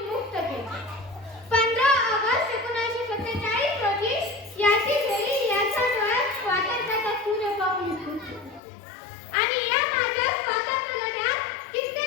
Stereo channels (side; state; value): right; drops out; at 8.6 s